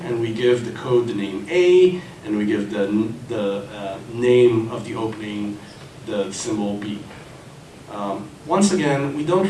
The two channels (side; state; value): both; identical; correlation 1.00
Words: and we give the code the name A, and we give the name of the opening the symbol B. Once again, we don't